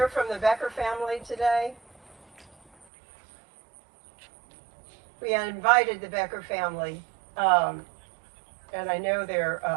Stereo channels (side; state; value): left; drops out; at 2.9 s